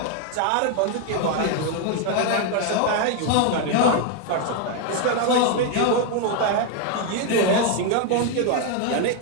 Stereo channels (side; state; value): both; different; correlation 0.01